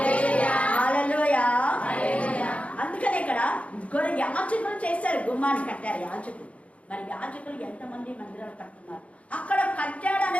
హల్లెలూయా. అందుకనే ఇక్కడ యాజకులు చేశారు, గుమ్మాన్ని కట్టారు యాజకులు. మరి యాజకులు ఎంతమంది మందిరాలు కట్టున్నారు? అక్కడ కట్టాడు అనే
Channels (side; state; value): right; late; 0.064 ms